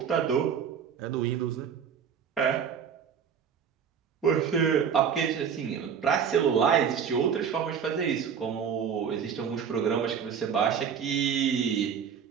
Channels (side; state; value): left; quieter; 7.3 dB